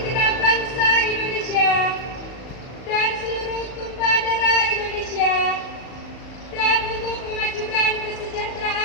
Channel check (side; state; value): right; late; 37 ms